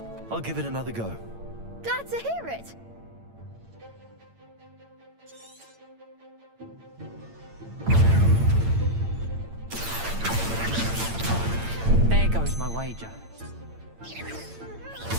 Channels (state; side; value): late; left; 8.8 ms